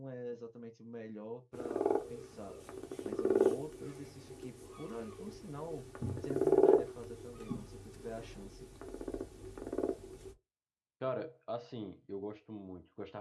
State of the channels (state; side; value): identical; both; correlation 1.00